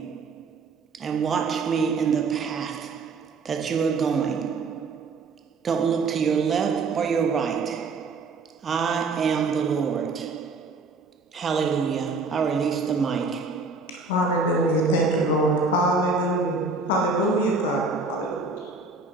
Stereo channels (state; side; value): quieter; left; 3.9 dB